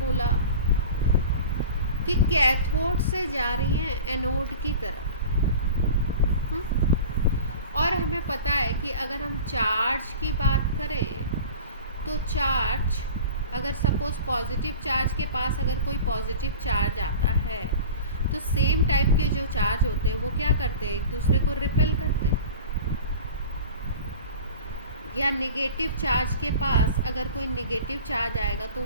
कि कैथोड से जा रही हैं एनोड की तरफ। और हमें पता है कि अगर हम चार्ज की बात करें तो चार्ज, अगर सपोज पॉजिटिव चार्ज के पास अगर कोई पॉजिटिव चार्ज आता है तो सेम टाइप के जो चार्ज होते हैं वो क्या करते हैं, एक दूसरे को रिपेल करते हैं। या नेगेटिव चार्ज के पास अगर कोई नेगेटिव चार्ज आएगा तो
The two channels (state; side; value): inverted; both; correlation -0.37